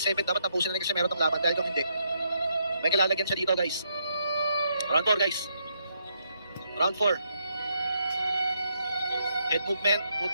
7, dapat tapusin na ni Casimero itong laban. Dahil kung hindi, may kilalagyan siya dito guys. Round 4 guys. Round 4. Head movement,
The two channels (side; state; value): both; inverted; correlation -0.76